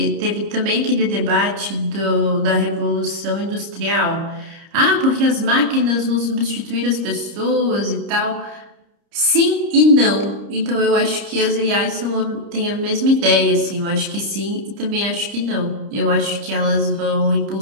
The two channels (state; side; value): late; left; 30 ms